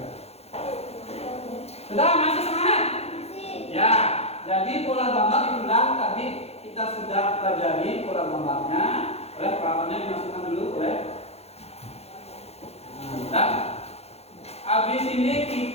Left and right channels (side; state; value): right; late; 0.30 ms